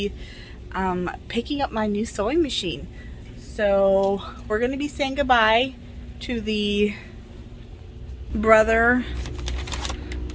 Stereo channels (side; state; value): both; identical; correlation 1.00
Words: picking up my new sewing machine. So we're going to be saying goodbye to the Brother